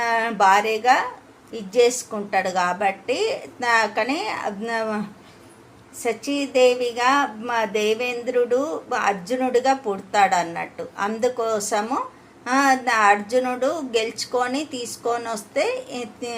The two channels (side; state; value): both; identical; correlation 1.00